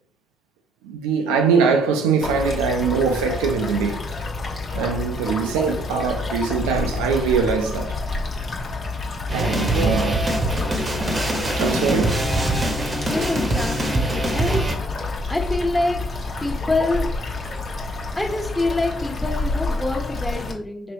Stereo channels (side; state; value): both; normal; correlation 0.63